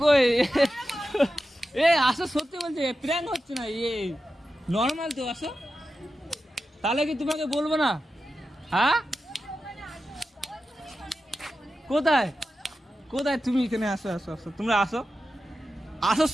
আসো, সত্যি বলছে, প্র্যাঙ্ক হচ্ছে না, নর্মাল তো, আসো। তাহলে কি তোমাকে বলবো না? হ্যাঁ কোথায় তুমি? এখানে আসো, তোমরা আসো,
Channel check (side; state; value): both; normal; correlation 0.91